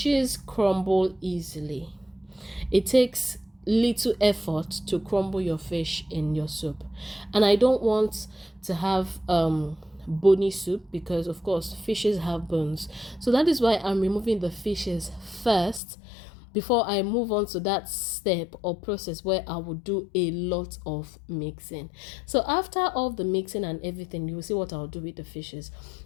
crumble easily. It takes little effort to crumble your fish in your soup. And I don't want to have bony soup because, of course, fishes have bones. So that is why I'm removing the fishes first before I move on to that step or process where I will do a lot of mixing. So after all the mixing and everything, you will see what I'll do with the fishes.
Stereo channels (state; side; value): drops out; right; at 15.8 s